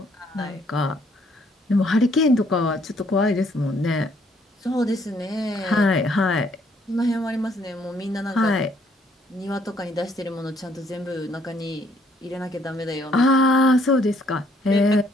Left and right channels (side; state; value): both; normal; correlation 0.66